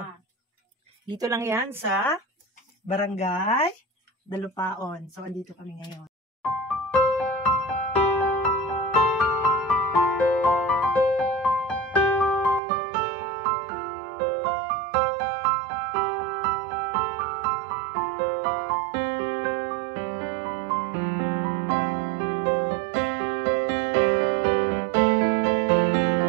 Dito lang yan sa Barangay Dalupaon. So, andito kami ngayon.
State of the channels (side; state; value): left; drops out; at 12.6 s